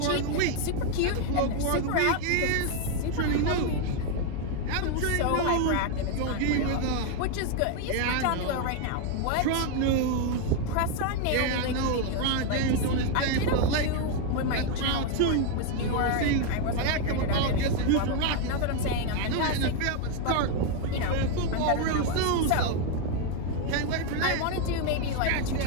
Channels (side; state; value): both; different; correlation 0.01